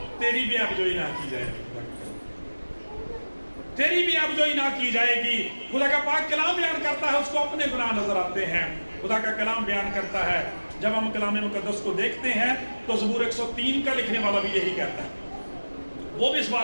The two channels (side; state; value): both; inverted; correlation -1.00